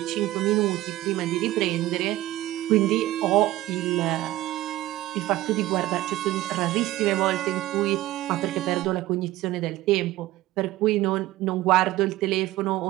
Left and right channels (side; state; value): left; quieter; 16.2 dB